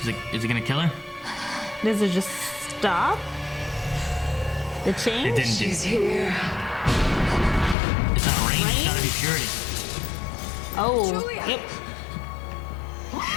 Is it gonna kill her? Does it just stop? The change? It didn't do. She's here. It's not rain. It's gotta be purity. Oh. Julia. Yep.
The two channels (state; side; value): drops out; right; at 7.8 s